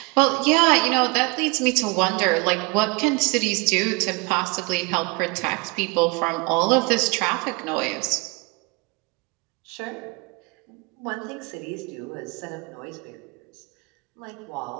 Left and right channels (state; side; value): quieter; left; 28.0 dB